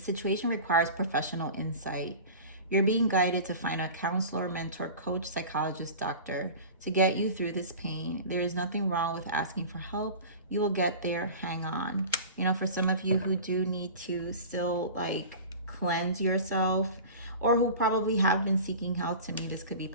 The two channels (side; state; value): both; inverted; correlation -0.36